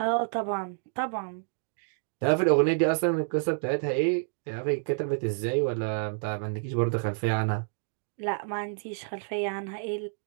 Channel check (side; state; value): left; silent; digital silence